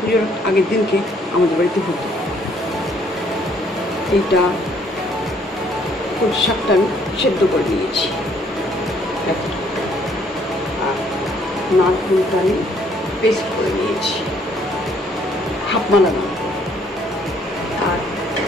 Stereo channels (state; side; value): normal; both; correlation 0.65